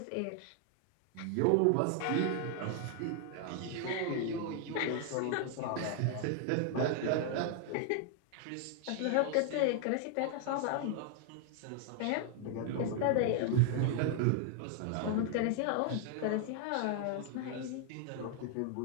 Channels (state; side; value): different; both; correlation 0.00